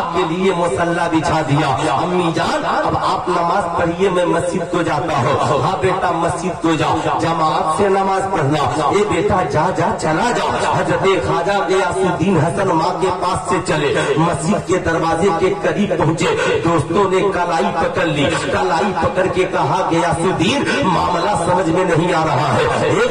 के लिए मुसल्ला बिछा दिया। अम्मी जान अब आप नमाज पढ़िए, मैं मस्जिद को जाता हूँ। हाँ बेटा मस्जिद को जाओ, जमात से नमाज पढ़ना। ये बेटा जा जा चला जाओ। हजरत ख्वाजा गियासुद्दीन हसन माँ के पास से चले, मस्जिद के दरवाजे के करीब पहुँचे। दोस्तों ने कलाई पकड़ ली, कलाई पकड़ के कहा गियासुद्दीन मामला समझ में नहीं आ रहा है। हे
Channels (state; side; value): identical; both; correlation 1.00